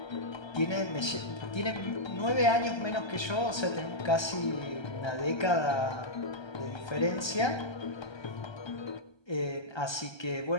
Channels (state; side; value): late; right; 1.3 ms